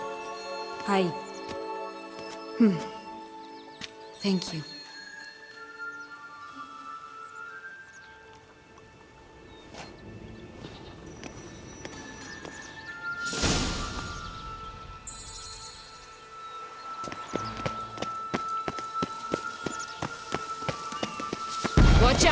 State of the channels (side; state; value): both; identical; correlation 1.00